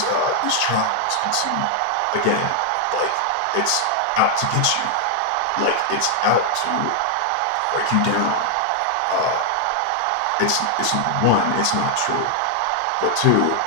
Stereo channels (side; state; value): both; different; correlation 0.00